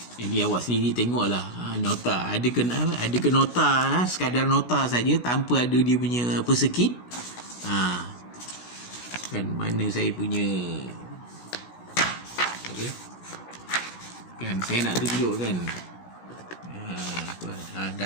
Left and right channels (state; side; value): late; right; 16 ms